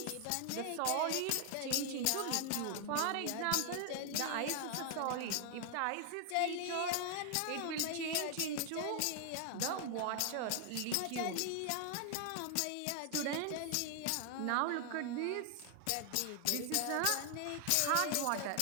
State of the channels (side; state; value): both; different; correlation 0.00